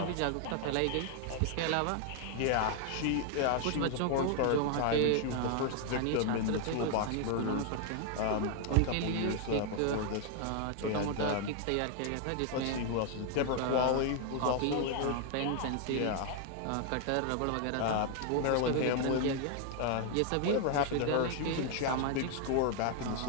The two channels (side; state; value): both; different; correlation 0.00